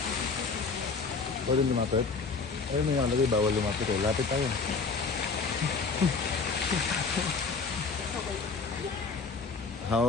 Pwede lumapit? Ay, may nakalagay, bawal lumapit eh. Lapit tayo.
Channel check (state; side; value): quieter; right; 4.7 dB